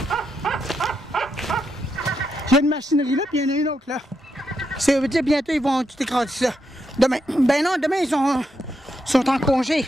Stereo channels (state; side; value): normal; both; correlation 0.82